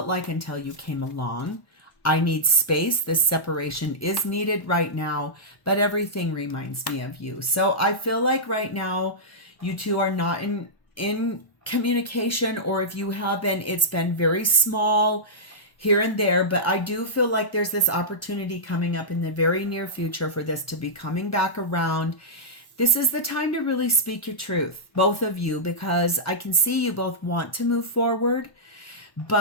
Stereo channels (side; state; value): right; late; 1.1 ms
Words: like until you came along. I need space. This separation is needed right now, but everything reminds me of you. So I feel like right now you two are not in communication, or if you have been, it's been very small here and there. But I do feel like there's this opportunity coming up in the very near future for this to be coming back around. This is the time to really speak your truth, both of you, because I can see you both want to move forward,